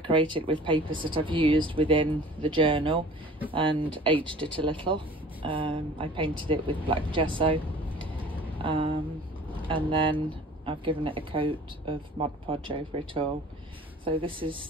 with papers that I've used within the journal and aged it a little. I painted it with black gesso, and then I've given it a coat of Mod Podge over it all. So this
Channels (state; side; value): normal; both; correlation 0.46